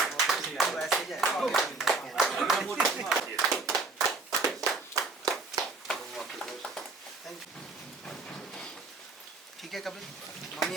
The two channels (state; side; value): quieter; left; 3.8 dB